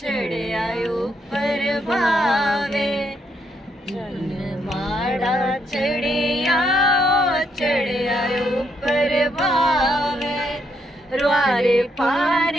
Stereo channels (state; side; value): normal; both; correlation 0.76